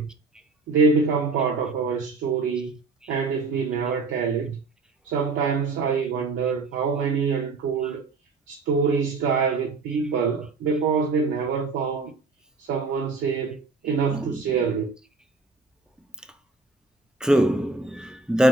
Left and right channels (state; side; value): quieter; left; 4.0 dB